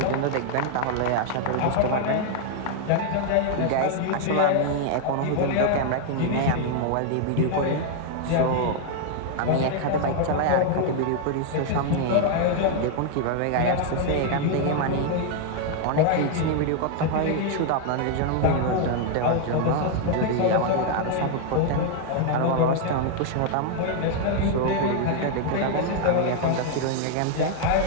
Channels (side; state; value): both; different; correlation 0.00